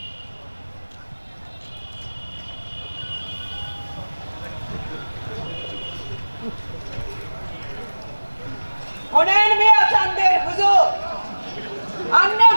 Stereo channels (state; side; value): inverted; both; correlation -1.00